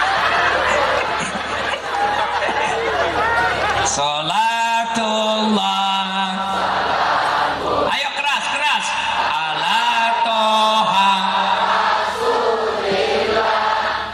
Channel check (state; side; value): identical; both; correlation 1.00